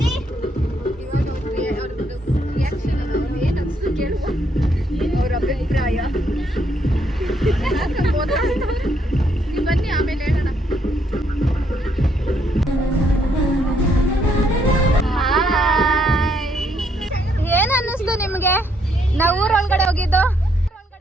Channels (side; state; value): both; normal; correlation 0.72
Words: ಅವ್ರ ಅಭಿಪ್ರಾಯ ಬನ್ನಿ, ಆಮೇಲೆ ಹೇಳೋಣ. ಏನ್ ಅನ್ನಿಸ್ತು ನಿಮ್ಗೆ ನಾವು ಊರೊಳಗಡೆ ಹೋಗಿದ್ದು?